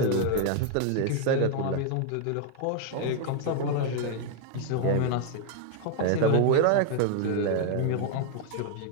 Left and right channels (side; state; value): both; different; correlation 0.00